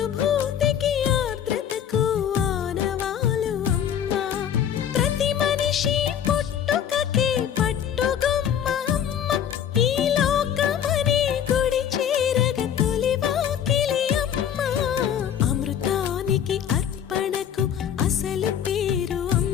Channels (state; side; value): quieter; right; 9.2 dB